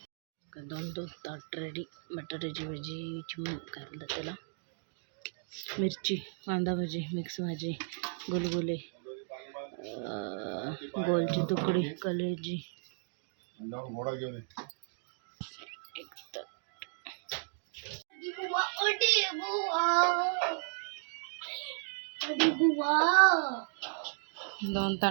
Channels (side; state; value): left; silent; digital silence